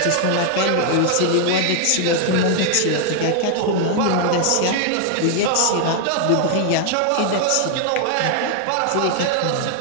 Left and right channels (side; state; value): both; different; correlation 0.00